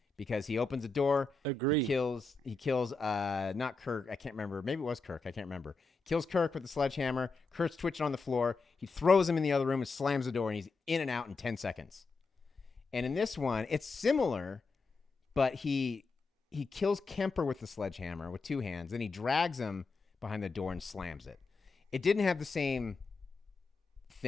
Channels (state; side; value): quieter; right; 3.9 dB